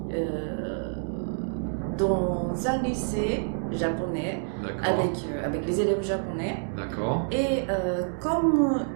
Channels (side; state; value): left; silent; digital silence